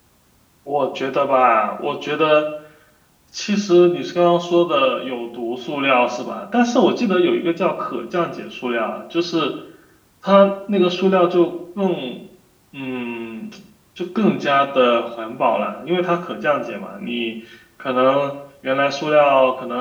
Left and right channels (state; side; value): identical; both; correlation 1.00